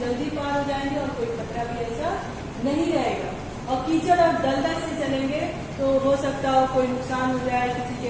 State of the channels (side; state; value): both; identical; correlation 1.00